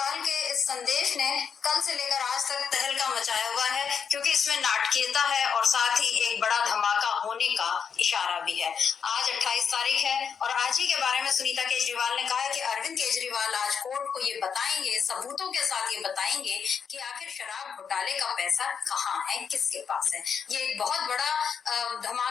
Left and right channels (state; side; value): quieter; right; 6.8 dB